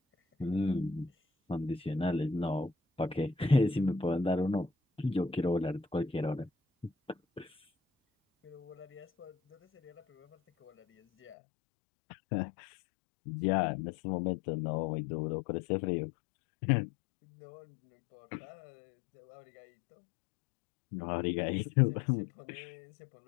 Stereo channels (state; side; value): drops out; right; at 11.4 s